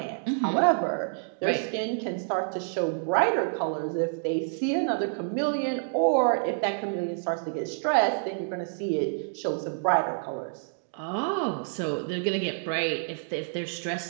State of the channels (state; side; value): silent; left; digital silence